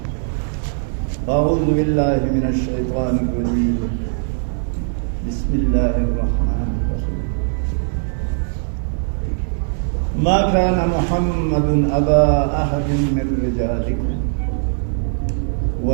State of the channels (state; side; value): silent; left; 66 dB below the other